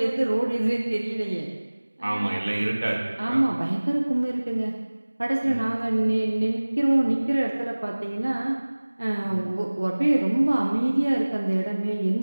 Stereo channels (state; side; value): inverted; both; correlation -1.00